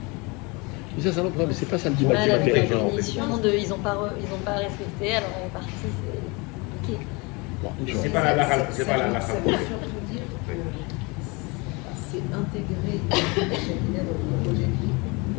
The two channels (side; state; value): right; quieter; 27.7 dB